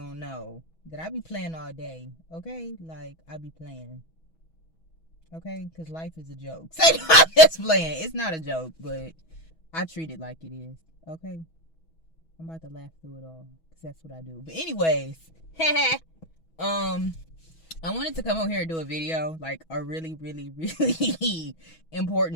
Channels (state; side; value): late; right; 6.2 ms